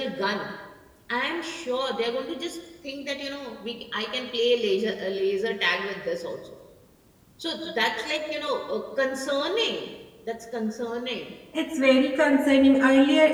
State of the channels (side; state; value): both; identical; correlation 1.00